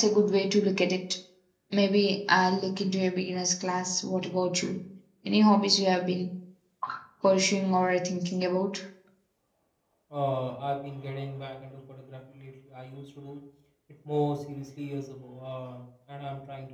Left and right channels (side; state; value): both; identical; correlation 1.00